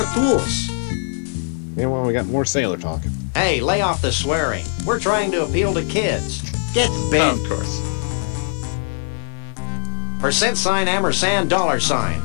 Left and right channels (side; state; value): right; silent; 65 dB below the other